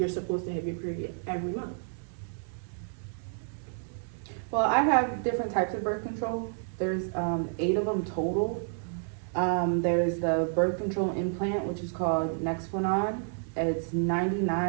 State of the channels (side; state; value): left; silent; 58 dB below the other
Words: supposed to have your period every month. Well, I have different types of birth control. There's 8 of them total. There's the birth control implant, which is called Nexplanon. It's